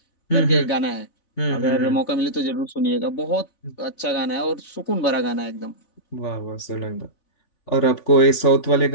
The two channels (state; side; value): late; right; 3.5 ms